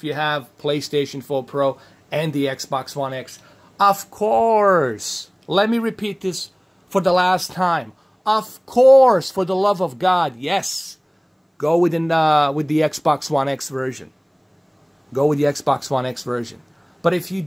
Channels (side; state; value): both; identical; correlation 1.00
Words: 4 Pro and the Xbox One X, of course, let me repeat this for the last time. Of course, for the love of God, yes, go with the Xbox One X version. Go with the Xbox One X version. But if you